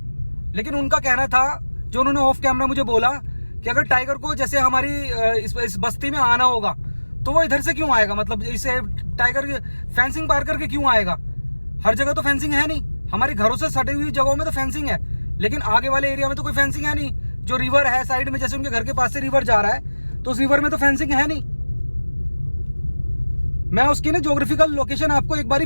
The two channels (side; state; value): both; inverted; correlation -1.00